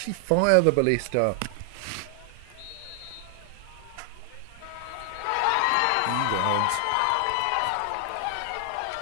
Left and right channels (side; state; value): both; different; correlation 0.00